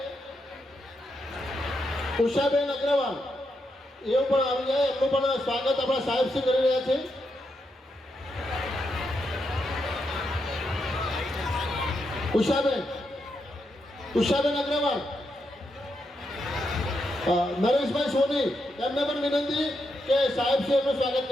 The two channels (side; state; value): both; normal; correlation 0.83